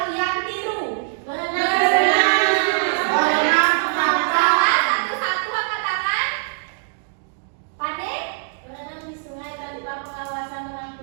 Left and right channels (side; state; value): left; silent; digital silence